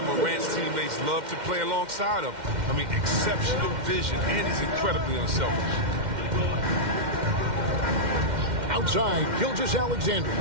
Morant's teammates love to play alongside him. I mean, exceptional vision, and he's incredibly unselfish. Outside, Gilgeous-Alexander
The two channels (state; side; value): late; left; 2.1 ms